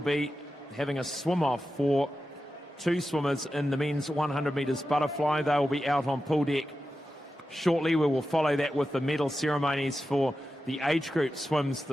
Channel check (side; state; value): both; normal; correlation 0.91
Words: having a swim-off for two swimmers in the men's 100 metres butterfly. They will be out on pool deck shortly. We will follow that with the medal ceremonies for the age group swims